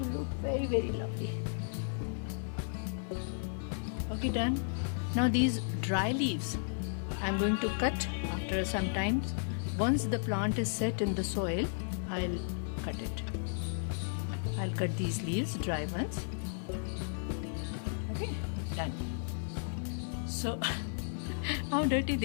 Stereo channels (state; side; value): silent; right; 55 dB below the other